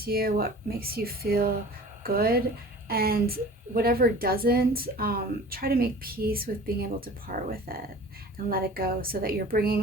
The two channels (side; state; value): both; normal; correlation 0.43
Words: you, what makes you feel good, and whatever doesn't, try to make peace with being able to part with it and let it go, so that you're